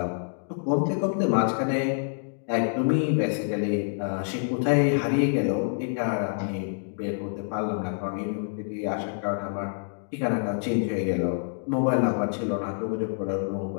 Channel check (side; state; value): right; silent; digital silence